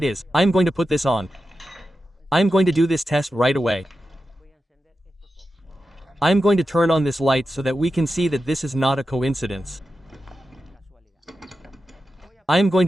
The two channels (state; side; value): normal; both; correlation 0.91